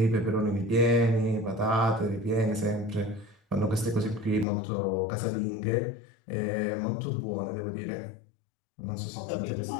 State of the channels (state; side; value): drops out; right; at 4.5 s